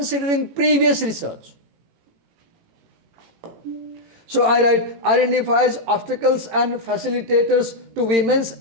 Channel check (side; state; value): left; late; 18 ms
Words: previous research. So I write, identifies obstacles and facilitators to women's